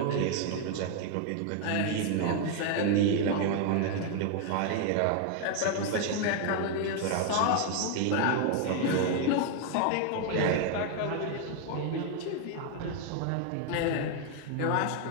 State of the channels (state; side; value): different; both; correlation 0.00